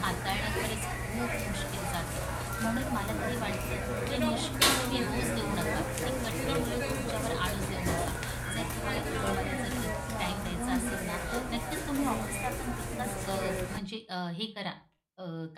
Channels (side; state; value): both; identical; correlation 1.00